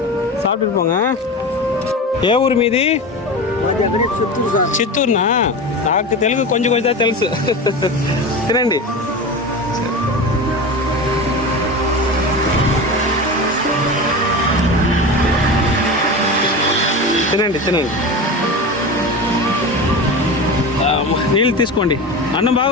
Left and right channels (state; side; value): normal; both; correlation 0.27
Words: சாப்பிட்டுட்டு போங்க. ఏ ఊరు మీది? చిత్తూరునా? నాకు తెలుగు కొంచెం కొంచెం తెలుసు. తినండి. తినండి తినండి. నీళ్ళు తీసుకోండి. అన్నం